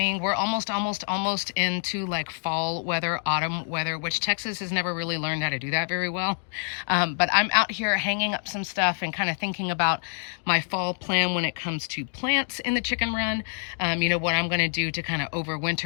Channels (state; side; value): silent; right; digital silence